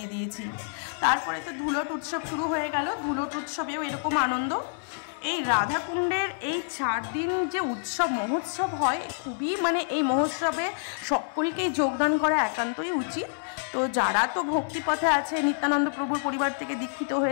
দিয়েছি। তারপরে তো ধুলট উৎসব শুরু হয়ে গেল। ধুলট উৎসবেও এরকম আনন্দ। এই রাধাকুণ্ডের এই 4 দিন যে উৎসব মহোৎসব হয়, খুবই, মানে এই মহোৎসবে সকলকেই যোগদান করা একান্তই উচিত। তো যারা তো ভক্তিপথে আছে, নিত্যানন্দ প্রভুর পরিবার থেকে দীক্ষিত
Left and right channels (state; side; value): silent; right; 58 dB below the other